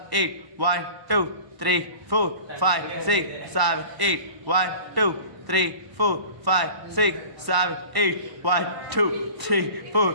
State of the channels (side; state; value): left; late; 1.0 ms